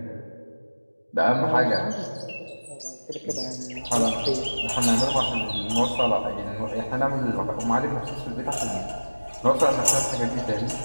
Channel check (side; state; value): both; inverted; correlation -1.00